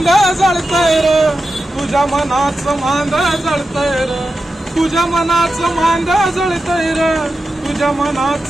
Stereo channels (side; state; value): both; normal; correlation 0.91